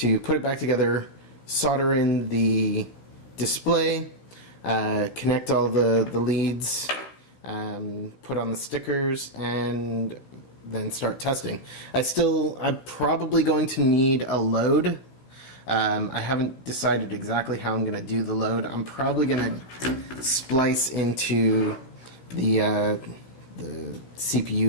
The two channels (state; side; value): late; right; 15 ms